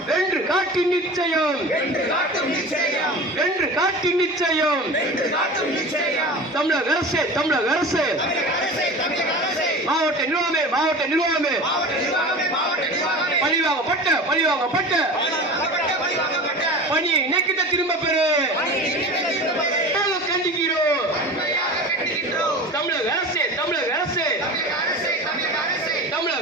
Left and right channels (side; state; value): both; normal; correlation 0.34